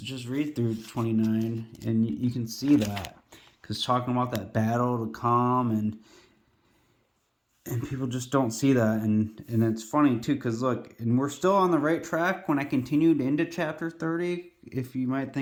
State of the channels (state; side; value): identical; both; correlation 1.00